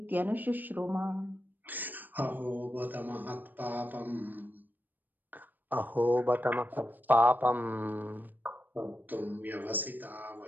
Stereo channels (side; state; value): left; late; 0.088 ms